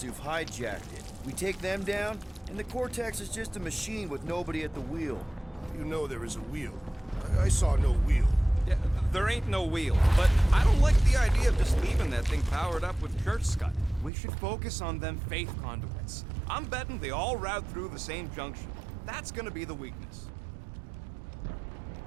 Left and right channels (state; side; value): drops out; left; at 14.1 s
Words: who've hijacked it. We take them down, and the cortex is just a machine with nobody at the wheel. You know there is a wheel. I saw no wheel. Yeah, there ain't no wheel, but I don't like the idea of just leaving that thing powered up with church scud. We should focus on them faith conduits. I'm betting they all route through the same junction. That's gonna be the weakness.